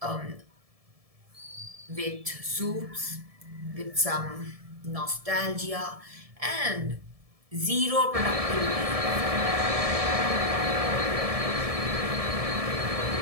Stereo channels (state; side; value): late; left; 1.7 ms